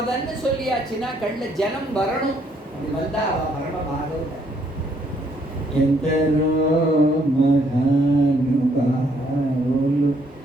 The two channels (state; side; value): normal; both; correlation 0.69